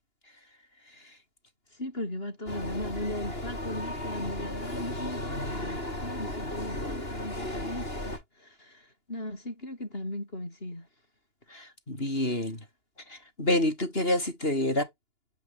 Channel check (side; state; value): right; late; 2.9 ms